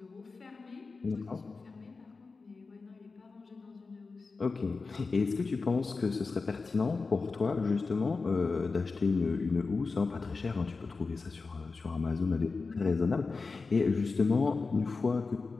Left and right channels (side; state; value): right; quieter; 4.2 dB